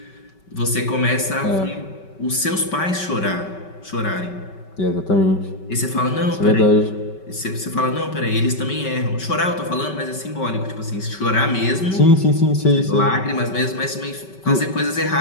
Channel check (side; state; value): right; late; 5.3 ms